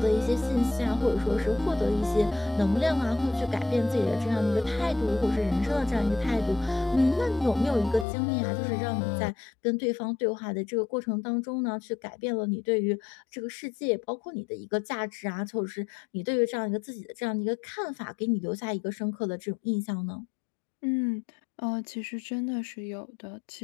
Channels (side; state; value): right; drops out; at 8.1 s